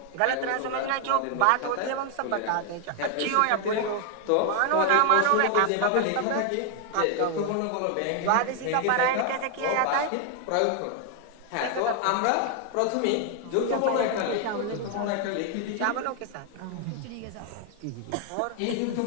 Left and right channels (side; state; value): both; different; correlation 0.00